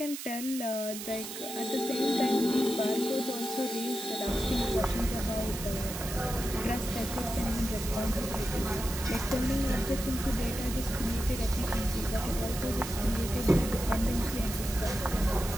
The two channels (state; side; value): noise; right; hiss, 8 dB below the sound